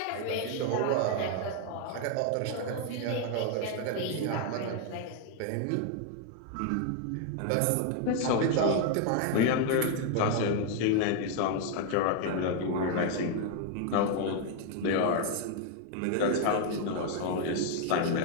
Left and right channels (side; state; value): both; different; correlation 0.00